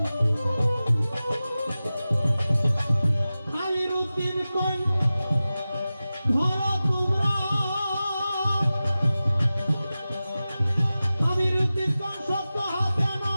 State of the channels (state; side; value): inverted; both; correlation -0.95